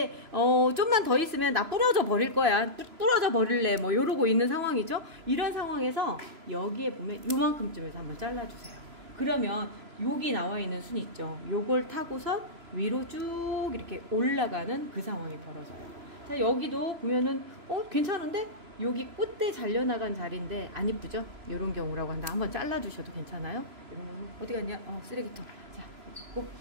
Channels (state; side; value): late; left; 3.0 ms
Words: 좀만 더 있으면 나 부러져 버릴 거야, 부러져 버릴래, 뭐 이러고 있는 상황이죠. 이런 상황에서 여기에 보면 요만큼쯤에서 한번 잘라주세요. 그러면 여기 나와 있는 순 있죠. 요걸 타고서 위로 쭉 이렇게 올라가는 그 상황이 벌어져요. 자, 여기도 보면은 괜찮은데? 여기 꽃대 잘려나간 자리인데 안 이쁘죠? 이런 경우라고 한다. 한번 잘라주셔도 괜찮아요. 이런 거는 어디 갔냐? 쓰레기통. 자, 꼭.